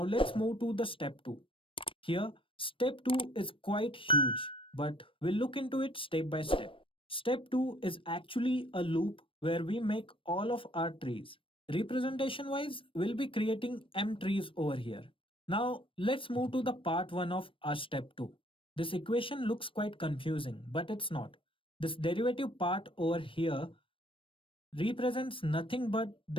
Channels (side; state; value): right; late; 0.25 ms